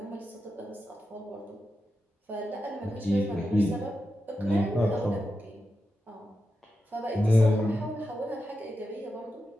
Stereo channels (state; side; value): normal; both; correlation 0.89